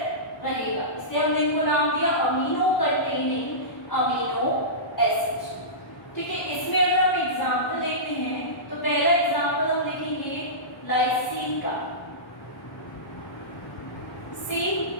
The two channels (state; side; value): late; right; 1.0 ms